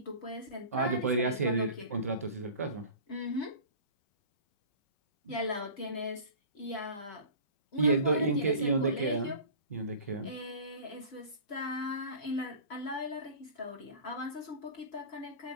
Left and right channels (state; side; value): late; right; 4.9 ms